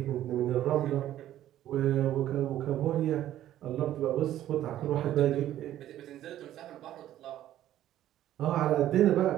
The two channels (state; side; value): quieter; left; 12.7 dB